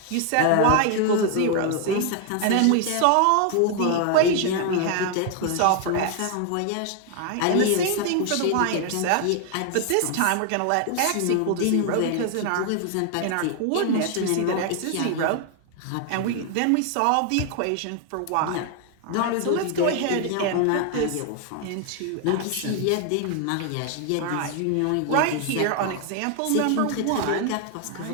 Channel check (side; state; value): both; different; correlation 0.00